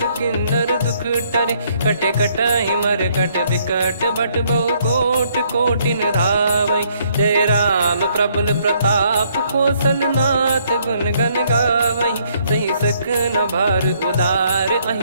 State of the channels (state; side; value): inverted; both; correlation -0.68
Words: किन्नर दुख टरे, कटे कटहि मर कट विकट बट बहु कोट कोटिन धावै। जय राम प्रबल प्रताप कौशलनाथ गुण गण गावै। सही सकन भार उदार